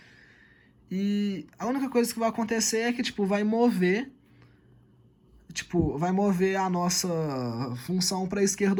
E a única coisa que vai acontecer é que, tipo, vai mover a nossa função para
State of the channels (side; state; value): both; identical; correlation 1.00